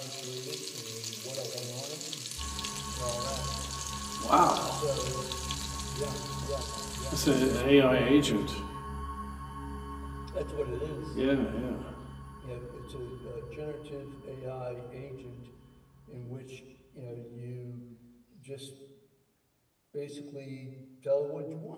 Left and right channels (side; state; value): both; identical; correlation 1.00